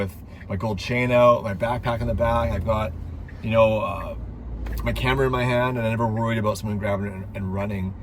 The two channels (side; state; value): both; identical; correlation 1.00